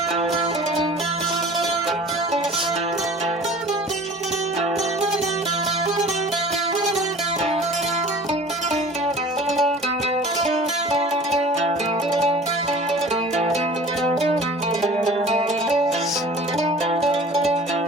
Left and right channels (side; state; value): both; normal; correlation 0.44